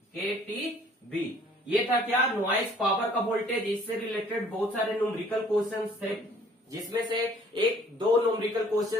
ये था क्या? नॉइज पावर का वोल्टेज। इससे रिलेटेड बहुत सारे न्यूमेरिकल क्वेश्चंस थे, जिसमें से एक दो न्यूमेरिकल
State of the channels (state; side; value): normal; both; correlation 0.57